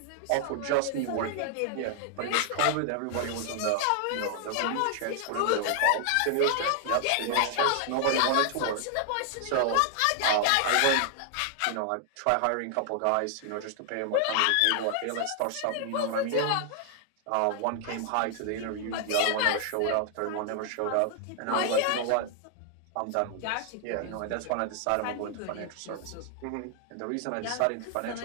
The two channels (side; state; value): both; different; correlation 0.00